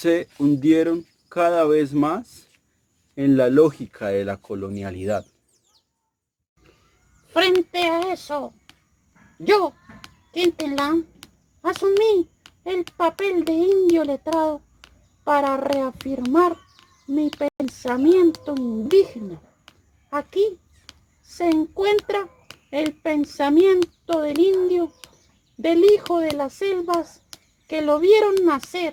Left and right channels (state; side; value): identical; both; correlation 1.00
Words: hundieron cada vez más en la lógica de la colonialidad. Frente a eso, yo, Quintín Lam, asumí el papel de indio letrado para reafirmar mi pensamiento indígena. Aquí se encuentra el pensamiento del indio, del hijo de las selvas, que lo vieron